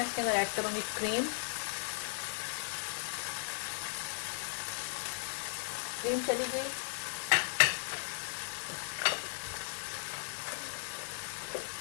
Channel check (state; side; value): silent; right; digital silence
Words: इसके अंदर ऐड करूंगी क्रीम। क्रीम चली गई,